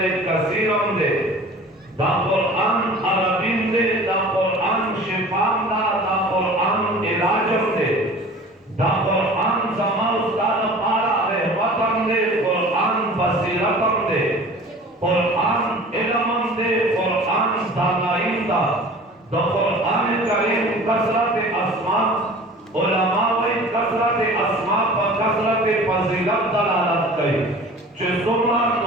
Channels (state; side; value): normal; both; correlation 0.43